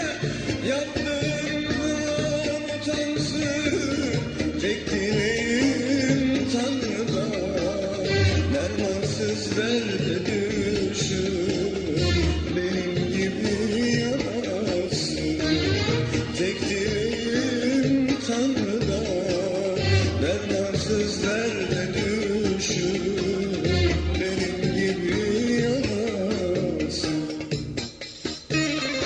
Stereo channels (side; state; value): both; identical; correlation 1.00